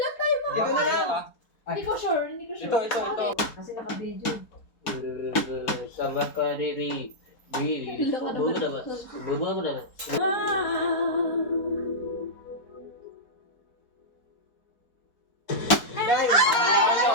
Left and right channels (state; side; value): late; right; 4.2 ms